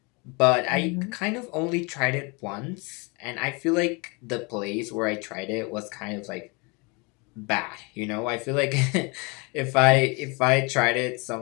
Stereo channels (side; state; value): right; quieter; 29.4 dB